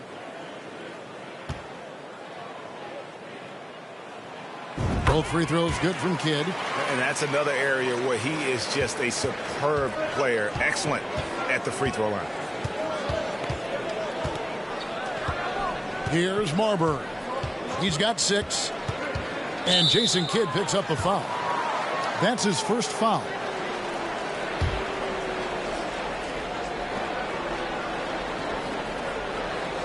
Both free throws good from Kidd. And that's another area where he is just a superb player. Excellent at the free throw line. Here's Marbury. He's got 6. And Jason Kidd picks up the foul. That's his first foul.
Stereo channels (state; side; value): identical; both; correlation 1.00